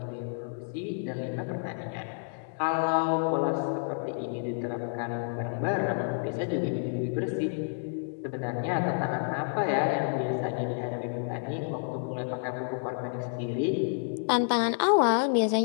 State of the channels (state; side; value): silent; right; digital silence